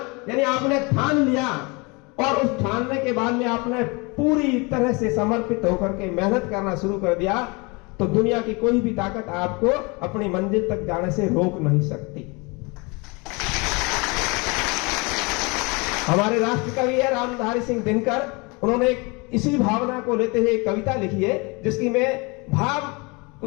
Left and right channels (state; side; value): quieter; right; 28.1 dB